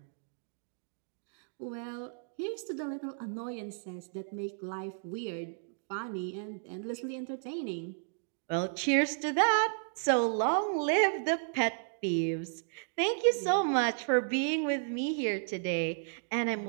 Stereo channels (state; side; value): silent; left; digital silence